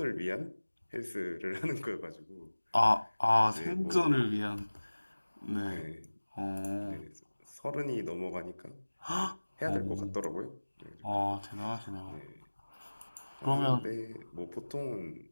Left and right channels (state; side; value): inverted; both; correlation -1.00